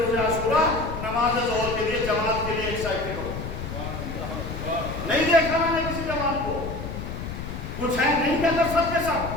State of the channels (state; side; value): noise; left; rumble, 7 dB below the sound